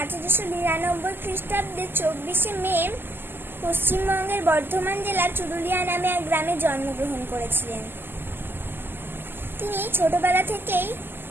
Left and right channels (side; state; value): left; late; 0.10 ms